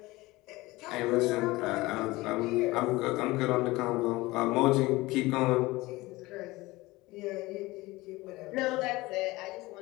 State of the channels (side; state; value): right; quieter; 20.5 dB